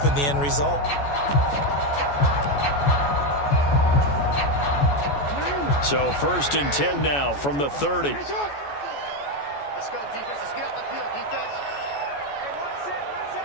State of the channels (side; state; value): right; late; 14 ms